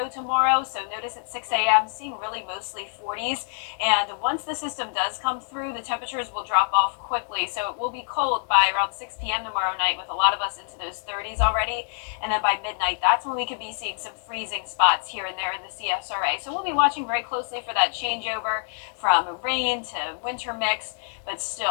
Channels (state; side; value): silent; right; digital silence